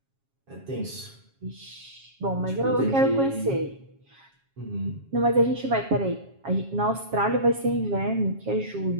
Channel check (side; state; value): left; late; 7.3 ms